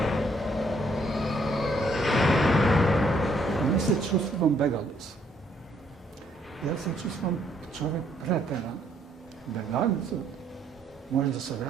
се чувствувам бегалец. Јас се чувствувам човек претеран. Бегалецот може да се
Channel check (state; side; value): normal; both; correlation 0.68